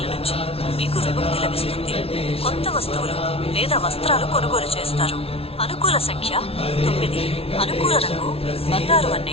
నుంచి మీకు విముక్తి లభిస్తుంది. కొత్త వస్తువులు లేదా వస్త్రాలు కొనుగోలు చేస్తారు. అనుకూల సంఖ్య 9. అనుకూల రంగు బంగారు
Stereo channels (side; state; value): right; late; 0.28 ms